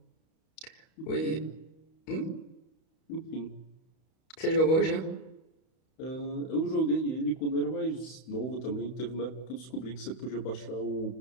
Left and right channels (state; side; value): late; right; 31 ms